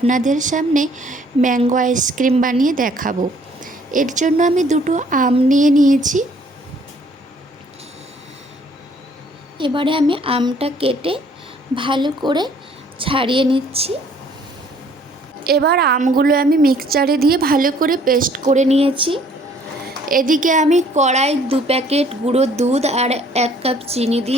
সামনে ম্যাঙ্গো আইসক্রিম বানিয়ে দেখাবো। এর জন্য আমি দুটো আম নিয়ে নিয়েছি। এবারে আমি আমটা কেটে ভালো করে ছাড়িয়ে নিচ্ছি। এবার আমগুলো আমি মিক্সচারে দিয়ে ভালো করে পেস্ট করে নিয়েছি। এদিকে আমি কড়াই 2 প্যাকেট গুঁড়ো দুধ আর 1 কাপ চিনি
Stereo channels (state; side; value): normal; both; correlation 0.60